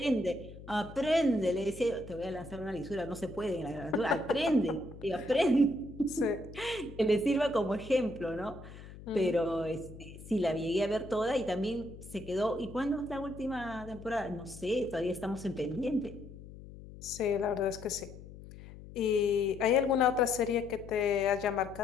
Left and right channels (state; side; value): noise; left; hum, 16 dB below the sound